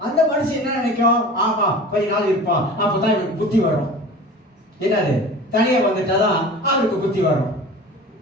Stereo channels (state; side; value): normal; both; correlation 0.38